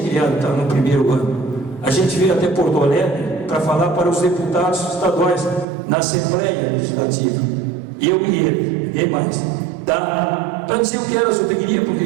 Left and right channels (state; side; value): drops out; left; at 5.7 s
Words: criado, estava no primeiro ano. A gente veio até Porto Alegre para falar para os deputados estaduais na Assembleia Legislativa. Eu e ele, e mais. Tá? Para dizer o que era a zootecnia,